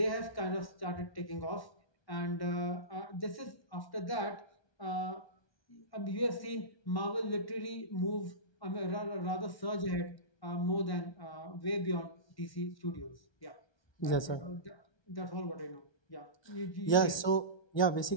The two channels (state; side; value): late; right; 1.2 ms